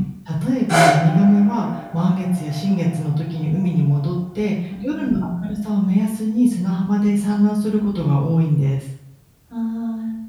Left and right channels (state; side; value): identical; both; correlation 1.00